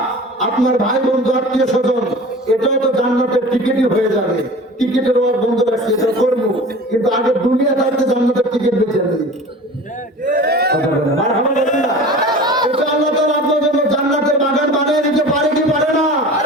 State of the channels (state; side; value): normal; both; correlation 0.39